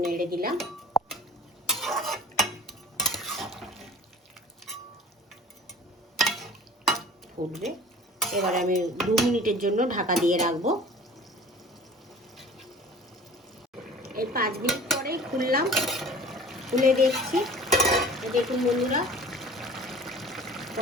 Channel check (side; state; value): both; normal; correlation 0.43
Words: নেড়ে দিলাম। ফুটবে। এবারে আমি 2 মিনিটের জন্য ঢাকা দিয়ে রাখবো। এই 5 মিনিট পরেই খুললাম, খুলে দেখছি। দেখুন বন্ধুরা,